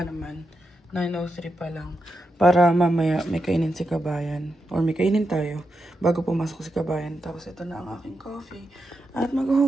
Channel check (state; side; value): normal; both; correlation 0.86